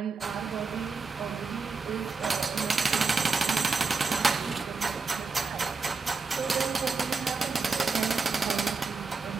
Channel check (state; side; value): quieter; left; 4.5 dB